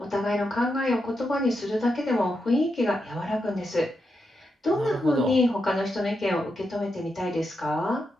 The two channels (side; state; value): both; normal; correlation 0.85